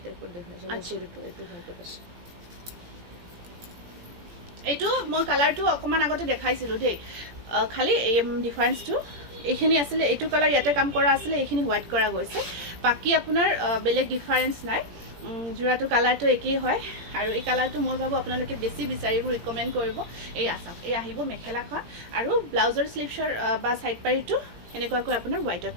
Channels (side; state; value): left; late; 17 ms